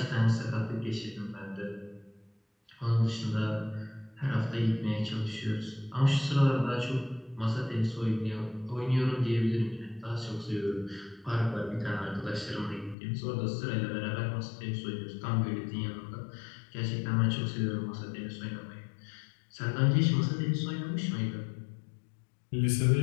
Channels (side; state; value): right; drops out; at 13.0 s